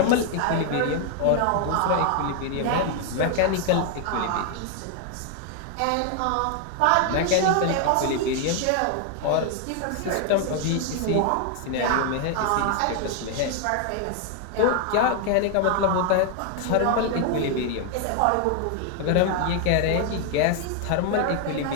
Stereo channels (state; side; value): different; both; correlation 0.00